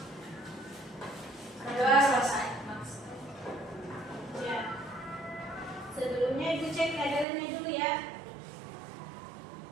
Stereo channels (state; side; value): drops out; left; at 7.2 s